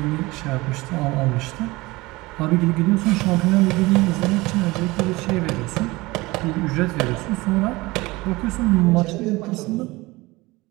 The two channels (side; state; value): left; quieter; 21.6 dB